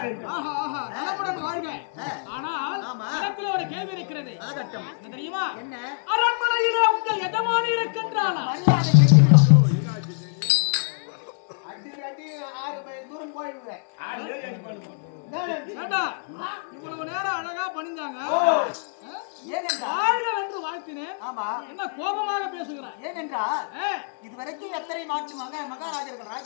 ஆனால் ஒரு கேள்வி இருக்கிறது. தெரியுமா? அரண்மனையிலே உங்கள் எஜமானி இருக்கின்றாளா? இவ்வளவு நேரம் அழகா பணிஞ்சாங்க, வாழ்த்தினேன். என்ன கோபமாக பேசுகிறார்? ஏனென்றால் இதுவரைக்கும் எத்தனை மாற்று மகாராஜர்கள்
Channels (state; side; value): silent; right; 61 dB below the other